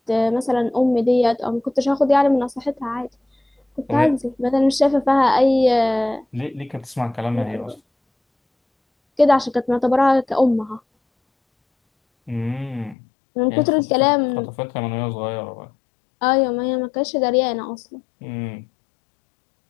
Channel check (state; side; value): drops out; right; at 13.0 s